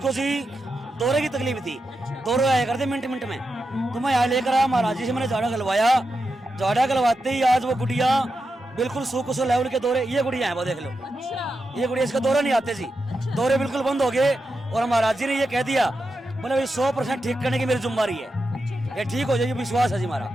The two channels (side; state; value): both; normal; correlation 0.88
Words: जी दौरे की तकलीफ थी, दौरे आया करते मिनट मिनट में। तो मैं यहाँ लेकर आया, महाराज जी से मैंने झाड़ा गलवाया। झाड़ा गलवाते ही आज वो गुड़िया बिल्कुल सो लेवल के दौरे, ये गुड़िया है वो देख लो, ये गुड़िया, इसका दौरे नहीं आते जी, दौरे बिल्कुल बंद हो गए। और महाराज जी ने ये कह दिया, बोले भाई 100% ठीक करने की मेरी जिम्मेदारी है, ये ठीक हो जाएगी, विश्वास है जी हमारा।